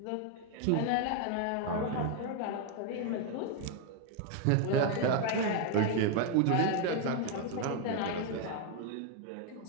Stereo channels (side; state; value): both; different; correlation 0.01